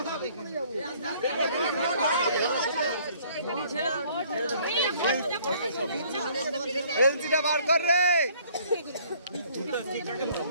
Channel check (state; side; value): inverted; both; correlation -0.59